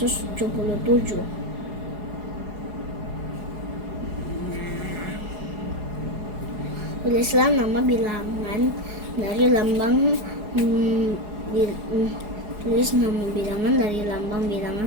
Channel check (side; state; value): left; late; 4.8 ms